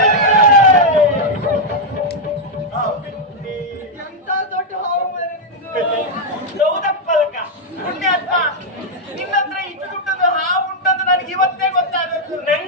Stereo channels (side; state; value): both; normal; correlation -0.02